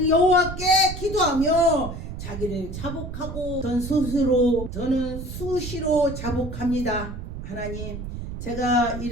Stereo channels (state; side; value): noise; right; rumble, 8 dB below the sound